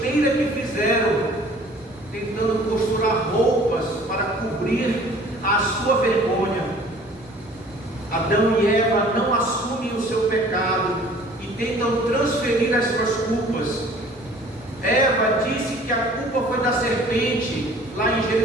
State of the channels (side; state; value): both; normal; correlation 0.51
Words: que fizeram, tentando costurar roupas para cobrir a sua vergonha. Adão e Eva não assumem o seu pecado e tentam transferir as suas culpas. Eva disse que a culpa foi da serpente, lá em